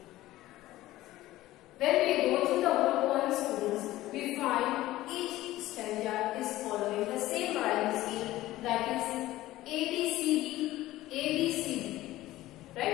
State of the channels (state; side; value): quieter; right; 16.2 dB